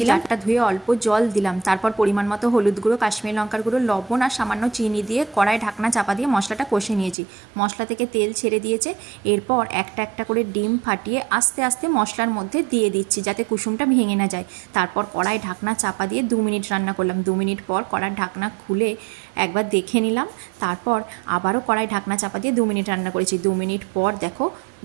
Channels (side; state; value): left; drops out; at 7.2 s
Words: দিলাম, ধুয়ে অল্প জল দিলাম, তারপর পরিমাণ মতো হলুদ গুঁড়ো, কাশ্মীরি লঙ্কার গুঁড়ো, লবণ আর সামান্য চিনি দিয়ে কড়াই ঢাকনা চাপা দিয়ে মশলাটা কষে নিয়েছি। মশলা থেকে তেল ছেড়ে দিয়েছে। এরপর একটা একটা করে ডিম ফাটিয়ে আস্তে আস্তে মশলার মধ্যে দিয়ে দিচ্ছি যাতে কুসুমটা ভেঙে না যায়। তারপর কড়াই ঢাকনা চাপা দিয়ে 2 মিনিট রান্না করলাম। 2 মিনিট পর কড়ার ঢাকনা খুলে একবার দেখে নিলাম। তারপর আবারও কড়াই ঢাকনা চাপা দিয়ে 2 মিনিট রান্না করেছি। 2 মিনিট পর দেখো